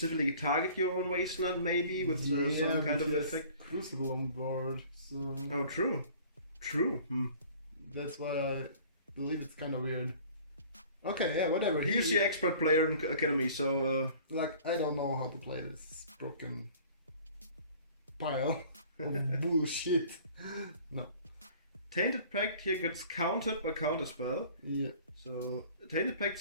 target your own wasteland, maybe with some kind of effect. Crucible on board. So oh, true. That's why I believe it's kind of weird. Okay, yeah, whatever. He's the expert player in Academy, so like I don't know how to play this broken pile of bullshit. No. Tainted Pact here gets countered by Counterspell. Yeah. So Tainted Pact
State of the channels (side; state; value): both; inverted; correlation -0.49